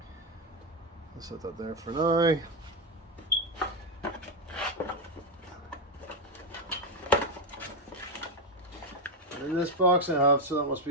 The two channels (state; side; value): normal; both; correlation 0.07